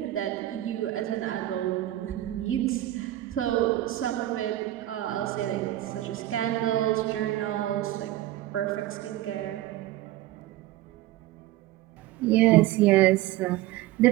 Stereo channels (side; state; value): left; quieter; 15.1 dB